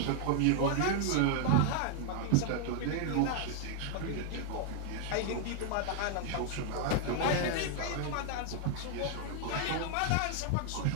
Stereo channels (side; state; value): both; different; correlation 0.00